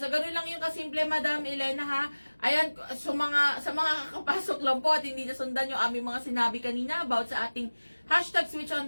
so ganun lang yung kasimple, Madam Elena ha. Ayan, sa mga kakapasok lang po at hindi nasundan yung aming mga sinabi kanina about sa ating hashtag switch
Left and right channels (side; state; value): both; inverted; correlation -1.00